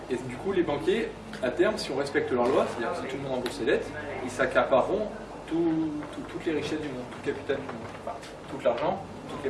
Et du coup, les banquiers, à terme, si on respecte leur loi, c'est-à-dire que si tout le monde rembourse ses dettes, ils s'accapareront toutes les richesses du monde, tout le capital du monde. Enfin, tout l'argent, tout le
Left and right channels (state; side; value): identical; both; correlation 1.00